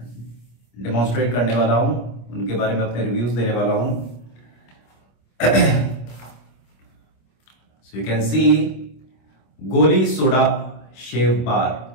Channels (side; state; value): right; late; 25 ms